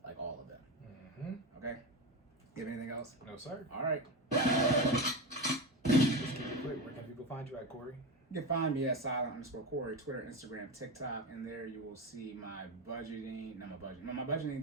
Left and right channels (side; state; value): both; normal; correlation 0.19